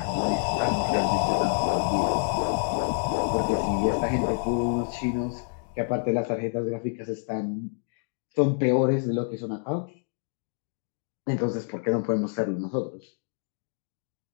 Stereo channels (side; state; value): right; silent; 60 dB below the other